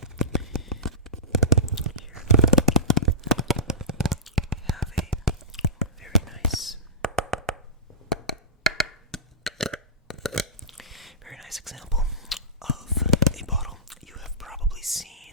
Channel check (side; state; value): both; normal; correlation -0.19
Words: here we have a very nice example of a bottle. You have probably seen